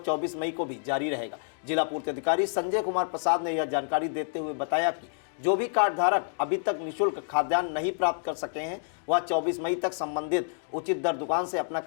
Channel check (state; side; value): silent; right; digital silence